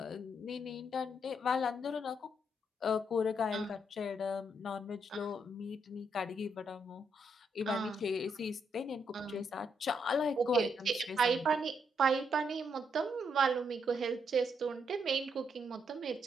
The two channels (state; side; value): normal; both; correlation 0.76